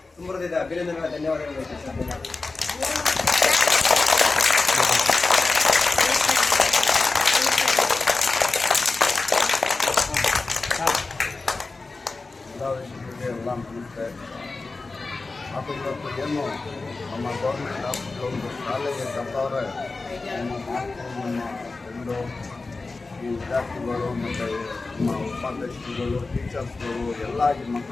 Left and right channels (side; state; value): right; quieter; 3.7 dB